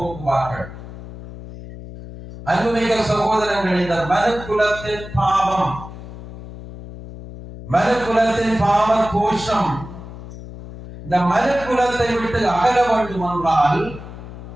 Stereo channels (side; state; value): left; noise; hum, 13 dB below the sound